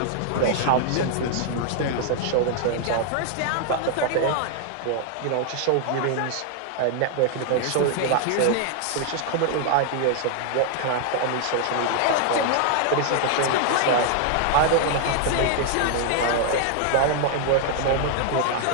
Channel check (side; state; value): both; different; correlation 0.00